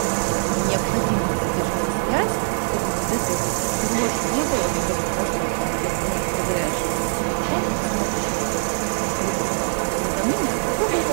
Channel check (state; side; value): silent; left; 64 dB below the other